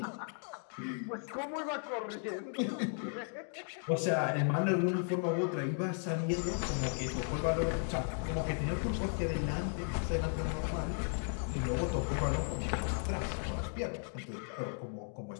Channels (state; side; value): silent; right; 54 dB below the other